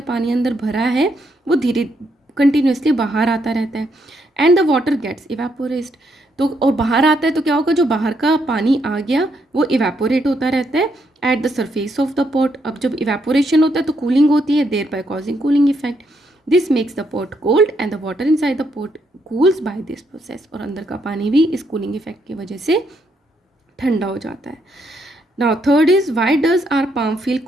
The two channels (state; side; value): normal; both; correlation 0.76